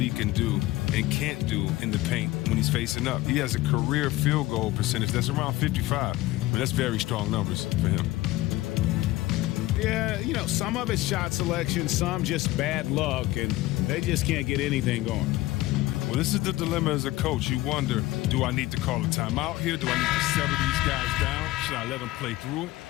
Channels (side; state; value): right; quieter; 17.8 dB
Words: can do and can't do in the paint when he's facing up. He has a career field goal percentage that's around 55. I mean, that's very strong numbers for him. Yeah, you know, some of it's shot selection, some just bad luck, and they just can't get anything going. Well, this is the dilemma as a coach. You wonder, do I need to call a timeout here? Do I need to settle these guys down? Should I let them play through it?